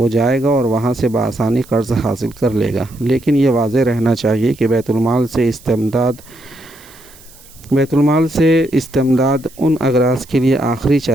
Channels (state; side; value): noise; right; hiss, 24 dB below the sound